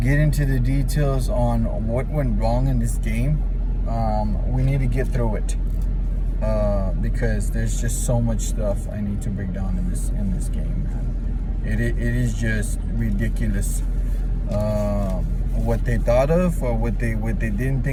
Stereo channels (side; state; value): both; identical; correlation 1.00